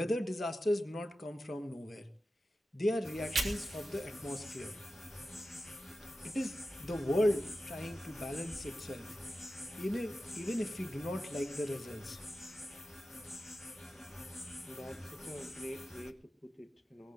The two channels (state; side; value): normal; both; correlation 0.93